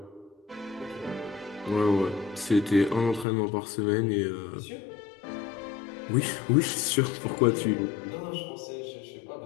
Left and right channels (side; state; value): right; drops out; at 3.2 s